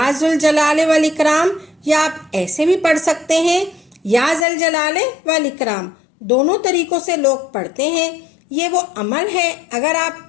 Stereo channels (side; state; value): right; drops out; at 4.5 s